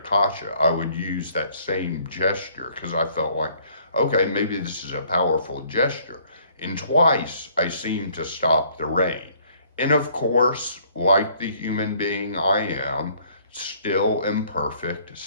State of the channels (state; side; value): inverted; both; correlation -0.61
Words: I would use that same gesture because I felt like, okay, maybe this is a powerful gesture. And twice I seemed to stop the rain. And of course, like the human being I am, still imperfect,